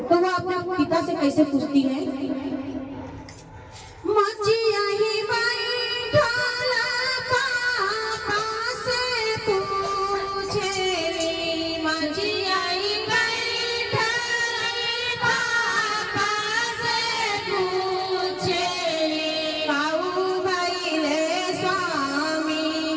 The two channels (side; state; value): both; identical; correlation 1.00